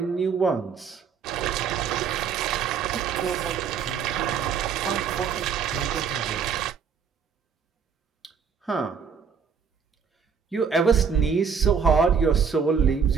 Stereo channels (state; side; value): quieter; left; 6.5 dB